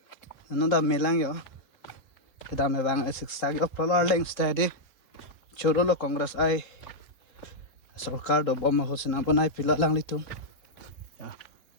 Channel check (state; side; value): late; right; 3.7 ms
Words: nó đã melang yo kita me bang ai six tag of polo leng steady chỗ đó là congress I सरकार do bom hot na banai pilo lang litum ya